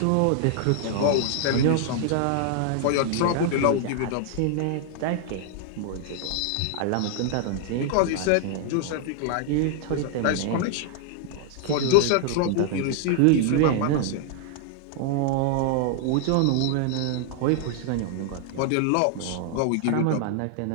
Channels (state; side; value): different; both; correlation 0.00